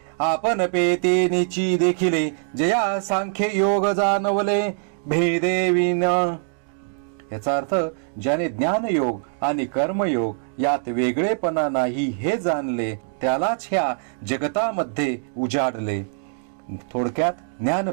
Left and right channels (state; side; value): silent; left; digital silence